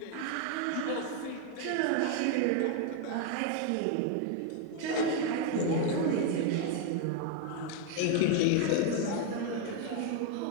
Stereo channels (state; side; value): different; both; correlation 0.01